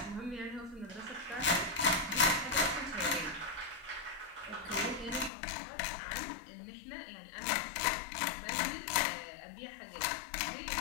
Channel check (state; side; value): drops out; right; at 5.3 s